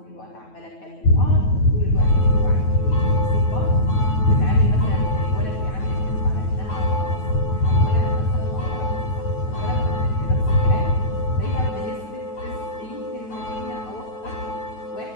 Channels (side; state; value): right; late; 9.3 ms